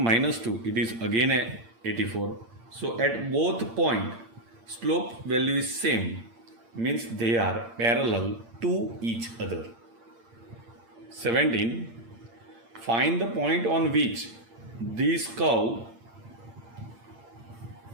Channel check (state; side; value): late; left; 8.7 ms